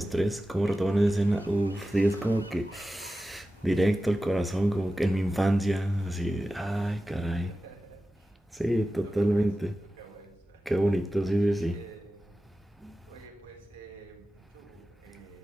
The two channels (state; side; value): normal; both; correlation 0.94